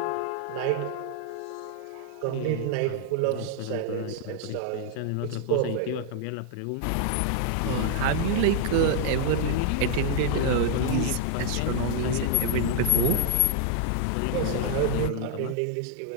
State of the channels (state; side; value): different; both; correlation -0.01